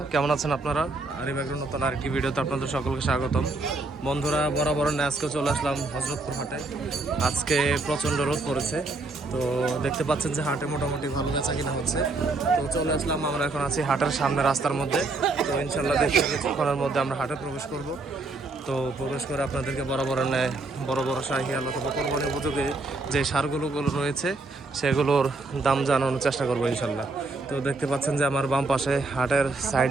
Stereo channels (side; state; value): left; quieter; 3.3 dB